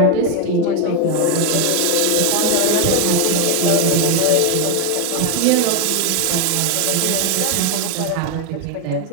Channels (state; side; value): different; both; correlation 0.01